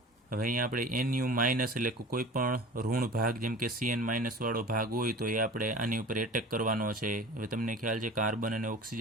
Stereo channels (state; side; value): normal; both; correlation 0.40